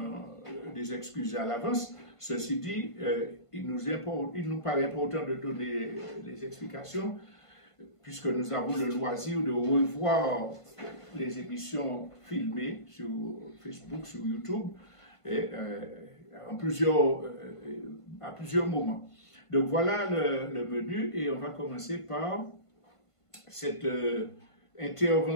des excuses à l'avance. Ceci dit, il nous paraît important de donner les explications, puisque nous avons le loisir de revoir les émissions filmées sur Facebook, sur YouTube, et, à plusieurs moments. Donc voilà le menu, et on va commencer par cette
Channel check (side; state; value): right; late; 1.5 ms